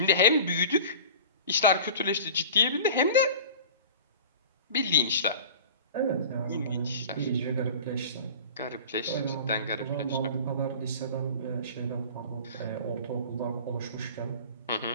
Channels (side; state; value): both; inverted; correlation -0.39